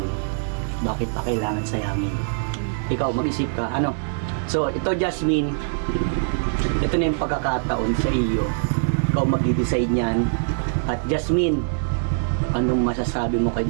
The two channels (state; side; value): silent; left; digital silence